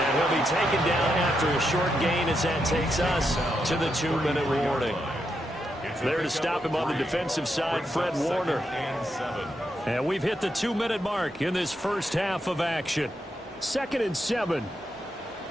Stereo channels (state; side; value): normal; both; correlation 0.83